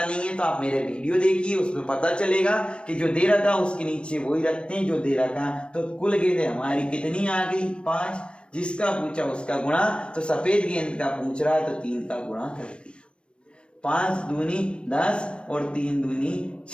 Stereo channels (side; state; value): right; late; 0.057 ms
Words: नहीं है तो आप मेरे वीडियो देखिए, उसमें पता चलेगा कि जो दे रखा उसके नीचे वही रखते हैं जो दे रखा। तो कुल गेंदें हमारी कितनी आ गई? 5। जिसका पूछा उसका गुणा, तो सफेद गेंद का पूछ रहा है तो 3 का गुणा कर दिया। 5 दूनी 10 और 3 दूनी